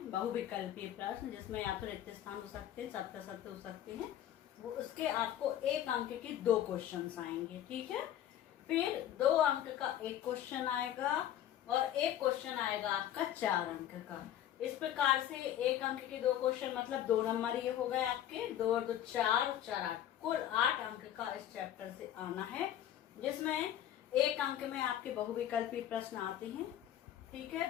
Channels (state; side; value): quieter; right; 11.4 dB